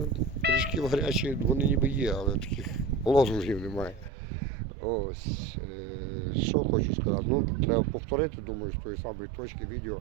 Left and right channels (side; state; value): left; drops out; at 4.1 s